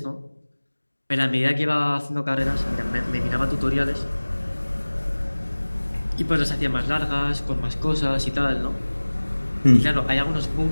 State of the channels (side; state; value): both; inverted; correlation -1.00